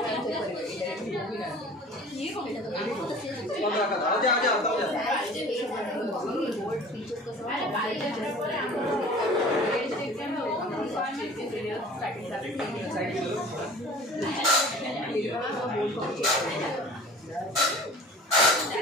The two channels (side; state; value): both; normal; correlation 0.44